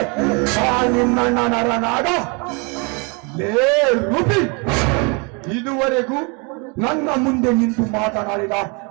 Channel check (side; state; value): left; quieter; 32.2 dB